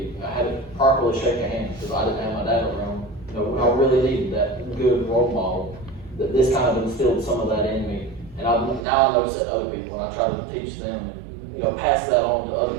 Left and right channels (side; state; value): left; drops out; at 8.8 s